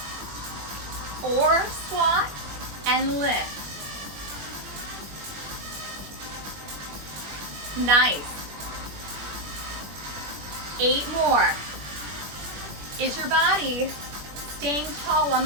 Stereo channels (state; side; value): late; left; 21 ms